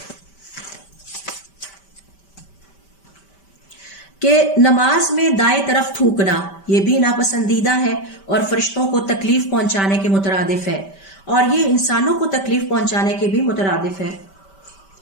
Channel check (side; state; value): right; late; 5.1 ms